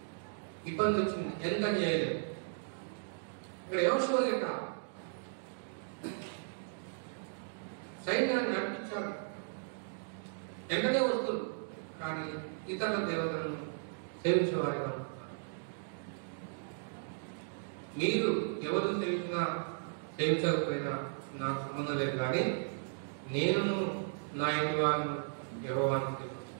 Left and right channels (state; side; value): silent; left; digital silence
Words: ఇబ్బంది వచ్చింది, ఎంత చేయలేదు. ఇక్కడ యెహోషువ లేక సైన్యాన్ని నడిపించాడు, వెంటనే వస్తుంది, కానీ ఇతర దేవతలను సేవించేవారిగా ఉంటున్నారు. మీరు ఎవరు సేవించకపోయినా నాకు సంబంధం లేదు, కానీ నేను నా ఇంటి వారిని యెహోవాను